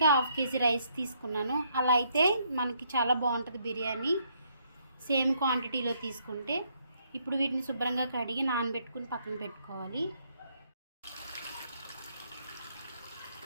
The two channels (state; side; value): inverted; both; correlation -0.71